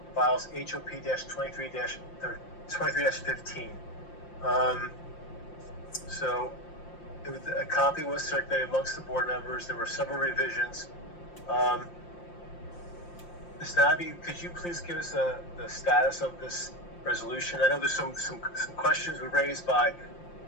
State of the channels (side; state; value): right; late; 5.7 ms